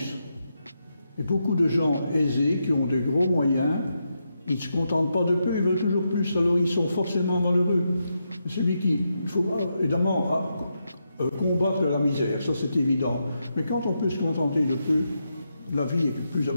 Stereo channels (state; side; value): inverted; both; correlation -0.84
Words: Et beaucoup de gens aisés qui ont de gros moyens, ils ne se contentent pas de peu, ils veulent toujours plus, alors ils sont forcément malheureux. Celui il faut évidemment combattre la misère, ça c'est évident. Mais quand on peut se contenter de peu, la vie est